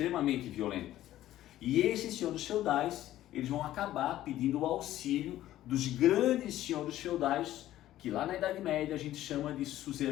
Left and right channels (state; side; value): quieter; right; 13.8 dB